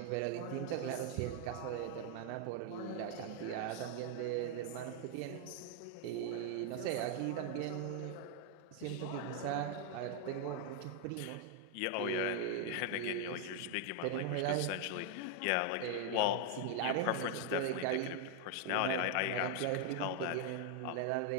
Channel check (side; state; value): both; different; correlation 0.00